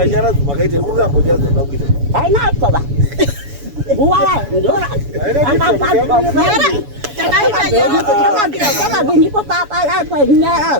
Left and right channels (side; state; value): left; late; 7.0 ms